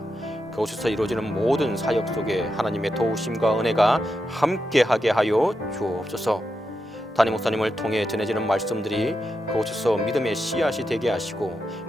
그곳에서 이루어지는 모든 사역 속에 하나님의 도우심과 은혜가 함께하게 하여 주옵소서. 담임 목사님을 통해 전해지는 말씀들이 그곳에서 믿음의 씨앗이 되게 하시고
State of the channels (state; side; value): normal; both; correlation 0.86